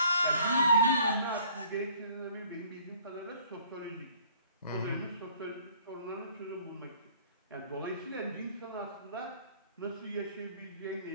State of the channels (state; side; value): inverted; both; correlation -0.57